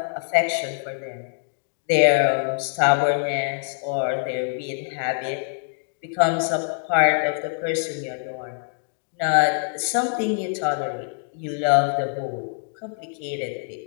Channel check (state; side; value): silent; right; digital silence